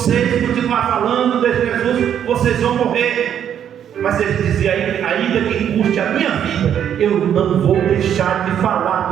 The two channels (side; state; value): left; quieter; 9.3 dB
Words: continuar falando de Jesus, vocês vão morrer. Mas ele dizia, ainda que custe a minha vida, eu não vou deixar de falar